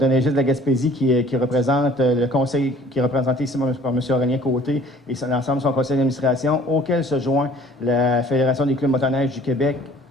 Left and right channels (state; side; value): normal; both; correlation 0.53